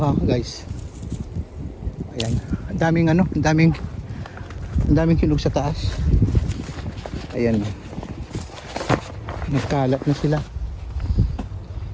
guys. Ayan, ang daming hinog sa taas. Ayan, nagkalat na sila.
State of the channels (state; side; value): identical; both; correlation 1.00